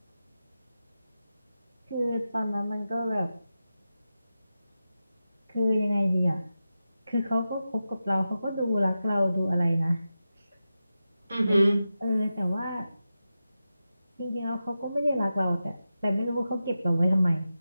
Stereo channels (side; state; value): both; inverted; correlation -0.92